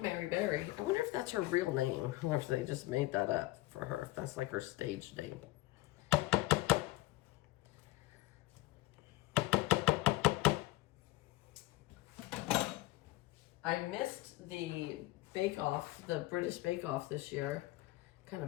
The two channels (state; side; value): quieter; right; 18.9 dB